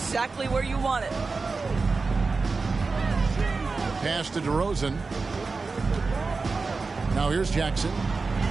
where you want it. Pass to DeRozan. Now here's Jackson.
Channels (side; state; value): left; quieter; 4.1 dB